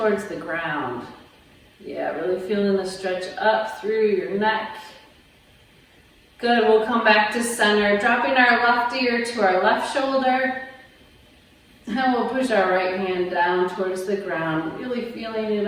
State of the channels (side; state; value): both; identical; correlation 1.00